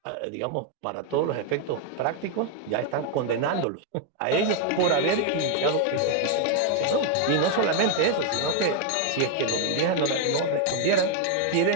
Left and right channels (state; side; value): different; both; correlation 0.00